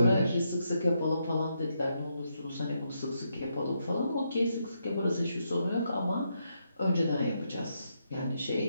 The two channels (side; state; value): both; inverted; correlation -0.80